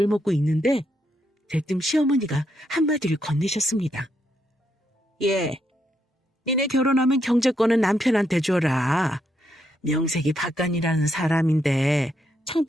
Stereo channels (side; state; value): both; normal; correlation 0.78